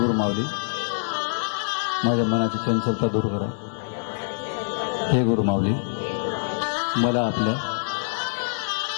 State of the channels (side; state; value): right; silent; digital silence